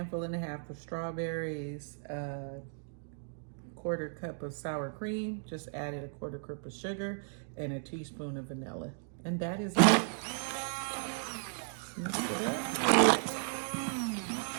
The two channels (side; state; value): left; silent; digital silence